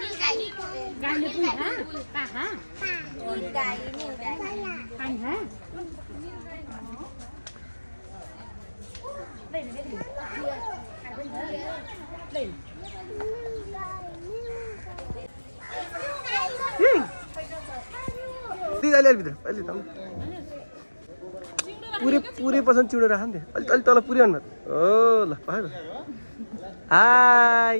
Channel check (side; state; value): both; inverted; correlation -1.00